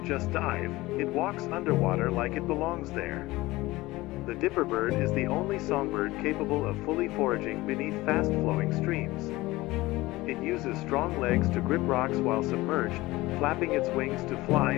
just dive, it walks underwater like it belongs there. The dipper bird is the only songbird capable of fully foraging beneath fast-flowing streams. It uses strong legs to grip rocks while submerged, flapping its wings to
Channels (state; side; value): quieter; right; 19.4 dB